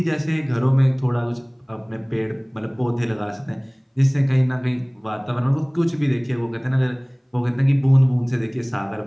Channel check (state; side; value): identical; both; correlation 1.00